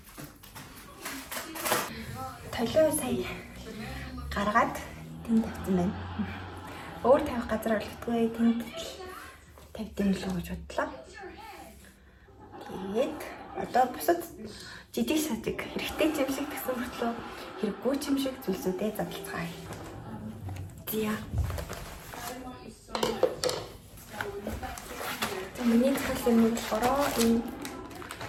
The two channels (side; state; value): both; identical; correlation 1.00